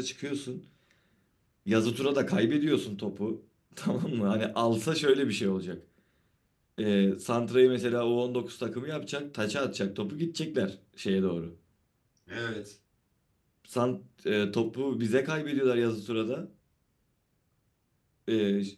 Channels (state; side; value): identical; both; correlation 1.00